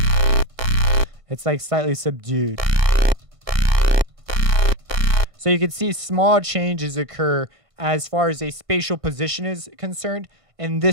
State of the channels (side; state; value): left; late; 1.5 ms